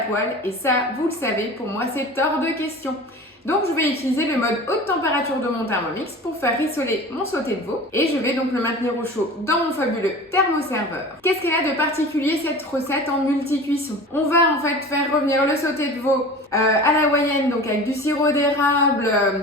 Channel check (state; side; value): normal; both; correlation 0.37